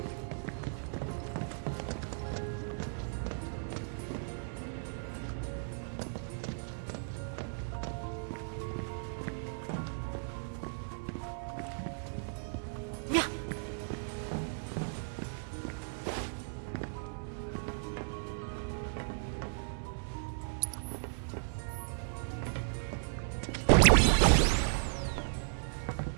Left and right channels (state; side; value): silent; left; digital silence